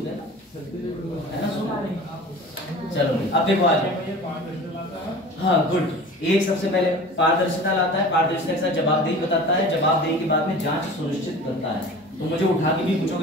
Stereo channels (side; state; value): both; normal; correlation 0.39